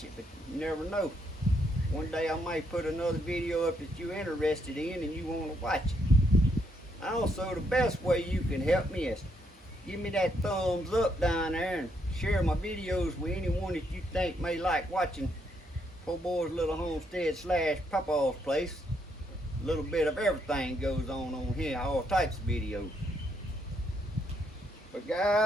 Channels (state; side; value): normal; both; correlation 0.75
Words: it, but you never know. One day I might put another video up that you're interested in and you want to watch it. Also, the best way you can help me is give me that thumbs up down there and share my videos with anyone that you think may like watching Poorboys Little Homestead slash Papaw's place. A little bit of everything goes on here, all types of videos. But